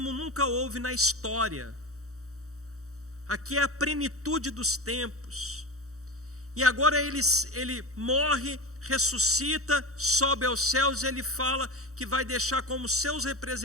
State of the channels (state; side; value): late; left; 0.65 ms